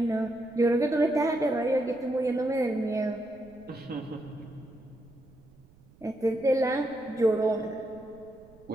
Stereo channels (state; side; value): noise; right; rumble, 26 dB below the sound